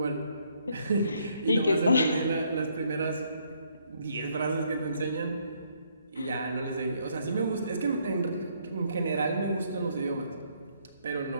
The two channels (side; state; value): both; inverted; correlation -0.70